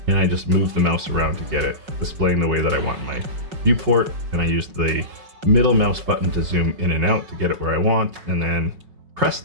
and I just move the mouse around to get it displaying the way that I want in my viewport. And I use the middle mouse button to zoom in and out to get it where I want, and then press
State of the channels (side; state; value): left; late; 5.4 ms